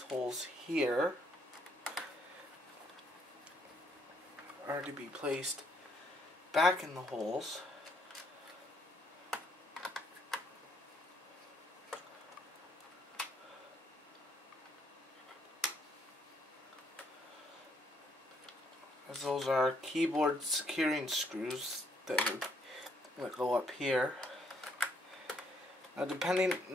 holes here are to be placed back in the holes. As those are keyboard securing screws that go up here. Now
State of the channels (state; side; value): normal; both; correlation 0.70